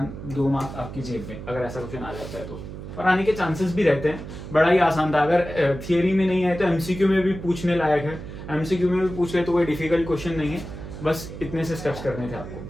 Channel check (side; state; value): right; noise; hum, 11 dB below the sound